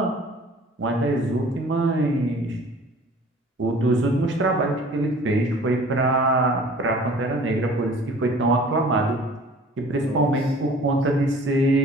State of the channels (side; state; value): both; normal; correlation 0.48